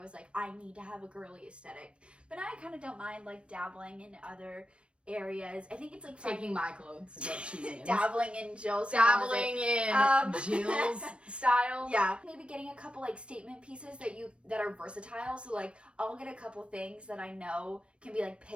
like, I need to have a girly aesthetic. But now I kind of don't mind like dabbling in other areas. I think it's like Taking my clothes is what she means. dabbling in Jill's Dabbling in Jill's style. Yeah. Maybe getting a couple like statement pieces that are versatile. So like I'll get a couple things that I know can be like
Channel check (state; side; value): late; left; 0.058 ms